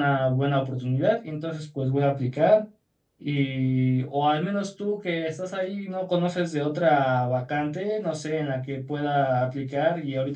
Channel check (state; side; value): identical; both; correlation 1.00